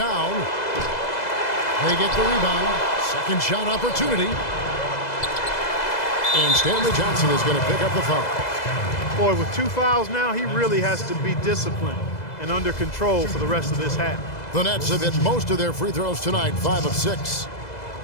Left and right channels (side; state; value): right; late; 2.0 ms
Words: They get the rebound. Second shot opportunity. And Stanley Johnson is going to pick up the foul. Boy, with 2 fouls now, he really has to be disciplined and under control for the rest of this half. The Nets have hit most of their free throws tonight, 5 of 6.